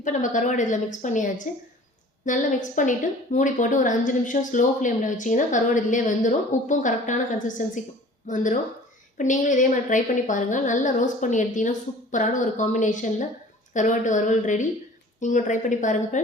நம்ம கருவாடு இதில் மிக்ஸ் பண்ணியாச்சு. நல்லா மிக்ஸ் பண்ணிவிட்டு மூடி போட்டு ஒரு 5 நிமிஷம் ஸ்லோ ஃப்ளேமில் வச்சிங்கன்னா கருவாடு இதிலே வெந்துடும். உப்பும் கரெக்டான கன்சிஸ்டன்சிக்கு வந்துடும். இப்போ நீங்களும் இதே மாதிரி ட்ரை பண்ணி பாருங்கள். நல்லா ரோஸ்ட் பண்ணி எடுத்திங்கன்னா சூப்பரான ஒரு காம்பினேஷனில் கருவாட்டு வறுவல் ரெடி. நீங்களும் ட்ரை பண்ணி பாருங்கள்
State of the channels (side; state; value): both; normal; correlation 0.47